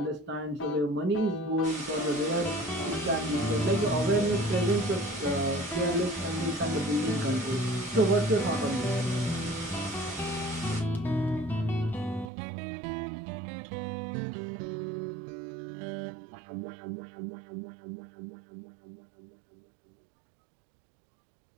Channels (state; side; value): drops out; left; at 12.3 s